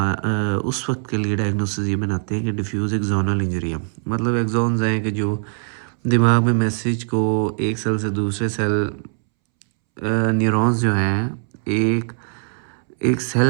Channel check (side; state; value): left; silent; 65 dB below the other